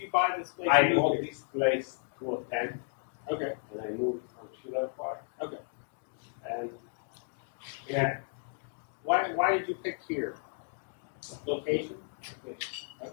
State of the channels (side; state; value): right; silent; 55 dB below the other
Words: buy this place? I bought this place 2010, Okay. and I moved from Schiller Park. Okay. And yeah, Why did you pick here? Location?